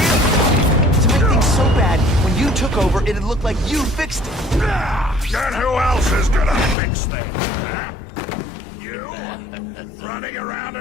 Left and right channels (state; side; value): drops out; right; at 6.8 s